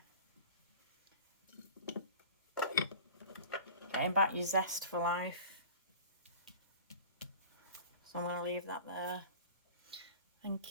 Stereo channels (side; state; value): both; inverted; correlation -0.40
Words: Getting back your zest for life. So I'm going to leave that there.